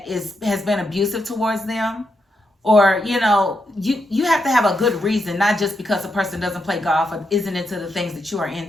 has been abusive towards them. Or, you know, you have to have a good reason, not just because a person doesn't play golf or isn't into the things that you are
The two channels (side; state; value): both; normal; correlation 0.83